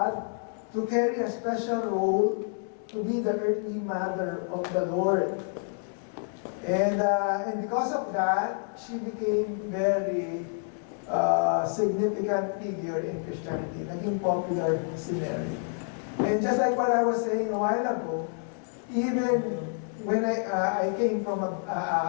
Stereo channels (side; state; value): right; silent; 59 dB below the other